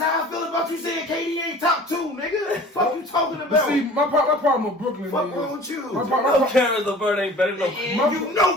I feel about you saying KD ain't top 2, nigga. Fuck you talking about? See, my problem with Brooklyn fuck wrong with you? My Karis LeVert ain't better than you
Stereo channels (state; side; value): normal; both; correlation 0.45